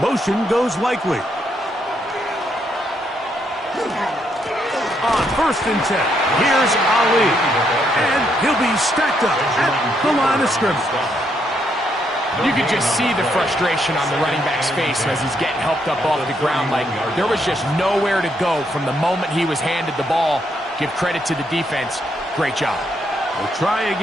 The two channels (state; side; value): normal; both; correlation 0.76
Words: goes Likely. On 1st and 10, here's Ali. And he'll be stacked up at the line of scrimmage. You could just see the frustration on the running back's face as he's getting helped up off the ground. Like there was just nowhere to go from the moment he was handed the ball. Give credit to the defense. Great job. We'll try